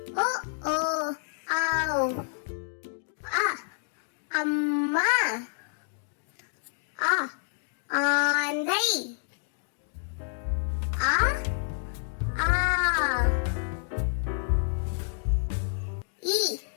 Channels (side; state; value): right; silent; digital silence